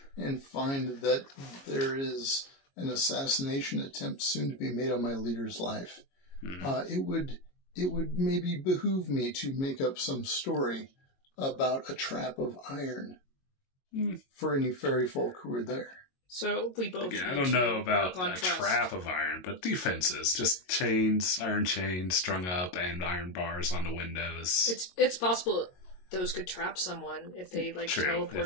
and find that there is an assassination attempt soon to be made on my leader's life, it would maybe behoove me to make up some story about a trap of iron for any fairy folk who are there. So we both. I don't know about a trap of iron, but defenses, just chains, iron chains strung up, and iron bars on the windows. It's possible those could trap someone if they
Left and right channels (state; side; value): late; right; 22 ms